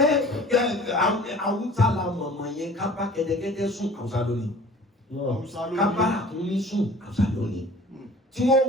Awúsá la mọ̀mọ̀ yẹn ká bá kẹ́tẹ́kẹ́tẹ́ sùn Awúsá lónìí. Ká bá àkúnmí sùn Awúsá lónìí. Tí wọ́n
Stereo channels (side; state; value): both; normal; correlation 0.47